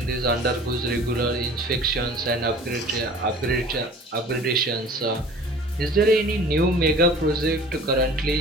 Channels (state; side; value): normal; both; correlation 0.45